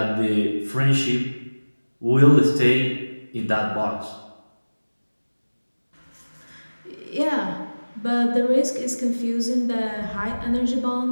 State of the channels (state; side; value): inverted; both; correlation -1.00